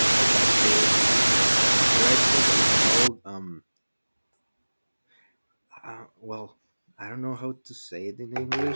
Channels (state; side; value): inverted; both; correlation -1.00